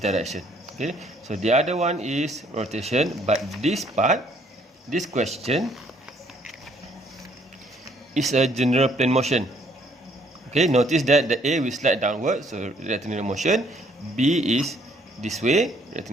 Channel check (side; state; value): both; normal; correlation 0.64